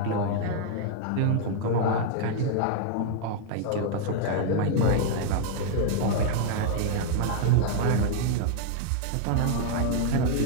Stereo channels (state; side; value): different; both; correlation 0.00